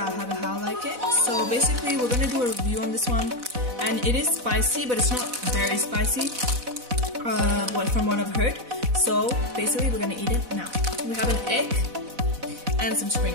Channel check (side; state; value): left; late; 4.0 ms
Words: I have it how I like it. So basically we're gonna do a review on this one, and it is spicy but it's not very spicy from what I've heard. So basically we're gonna eat it now. We have an egg and some